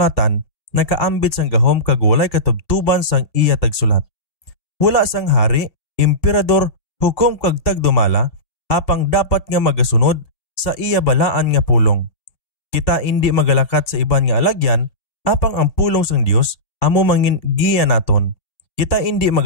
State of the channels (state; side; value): late; right; 2.2 ms